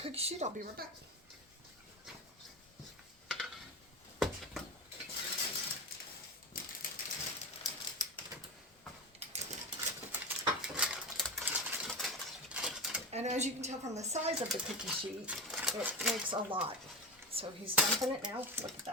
sheet. I'll be right back. And as you can tell from the size of the cookie sheet, it makes a lot. So he's dumping it now. Look at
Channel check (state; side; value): normal; both; correlation 0.21